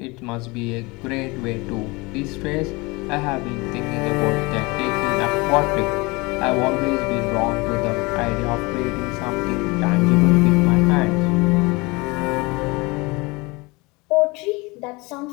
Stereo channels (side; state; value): right; quieter; 25.1 dB